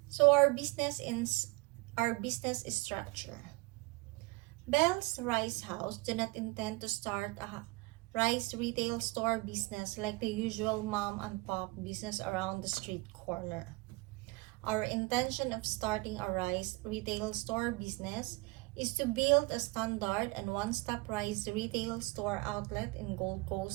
So our business structure. Bell's Rice House do not intend to start a rice retail store business like the usual mom and pop business around the street corner. Our intention of starting a rice retail store business is to build a standard and one-stop rice retail store outlet in Gold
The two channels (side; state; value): left; quieter; 25.3 dB